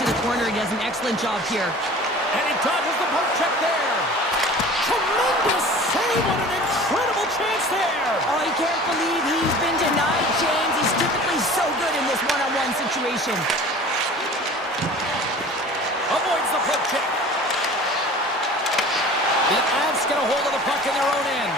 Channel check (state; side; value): normal; both; correlation 0.42